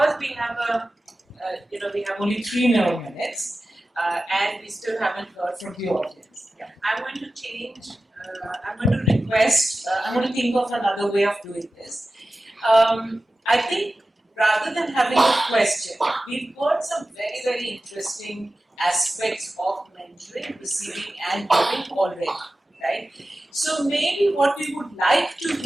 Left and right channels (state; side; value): normal; both; correlation 0.95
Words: we have we have only 3 more minutes, and we still haven't heard from the audience. Yeah. I'm going to change. I'm going to request. I'm going to think of another way of doing this. I think rather than having a question, we've got some very, very interesting aspects of mentoring, receiving, and giving already, right? So maybe what we would like to